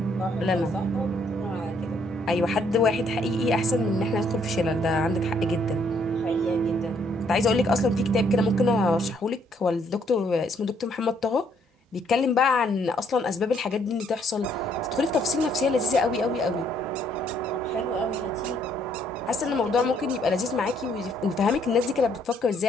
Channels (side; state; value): both; normal; correlation 0.68